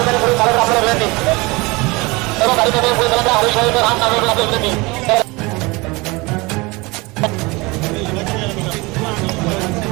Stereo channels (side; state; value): left; quieter; 24.5 dB